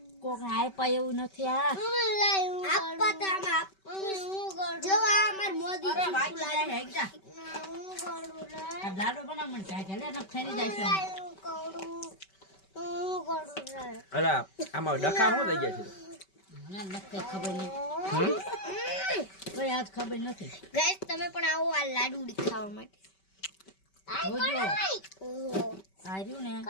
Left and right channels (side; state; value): right; late; 5.2 ms